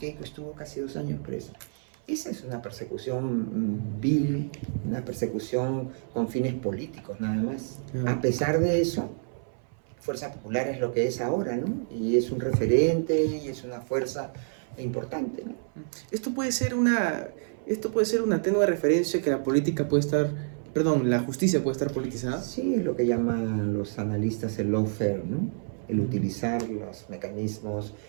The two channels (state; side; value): silent; left; 57 dB below the other